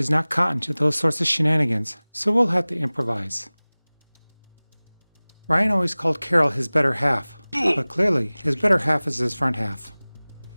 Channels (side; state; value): both; inverted; correlation -1.00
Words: not cotton to those sorts of shenanigans, so we'll have to improvise. Ryan always called Carol his better half, but clearly his better half is his front half.